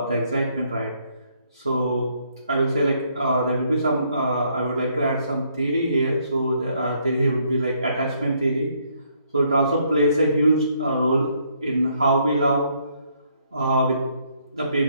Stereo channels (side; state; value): both; inverted; correlation -0.70